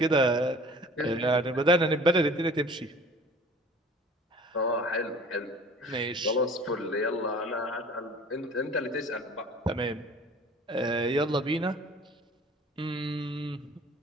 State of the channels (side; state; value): both; normal; correlation 0.47